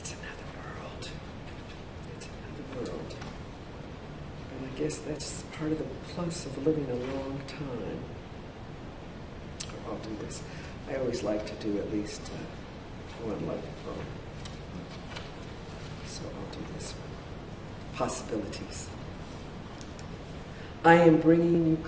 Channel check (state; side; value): identical; both; correlation 1.00